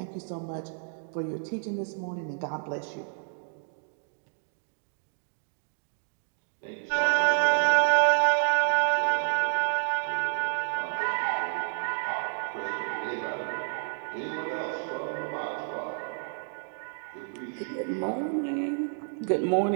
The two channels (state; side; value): silent; left; digital silence